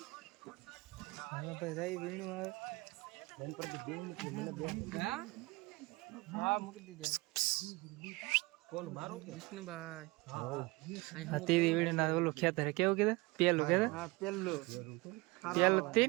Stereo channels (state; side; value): quieter; left; 24.3 dB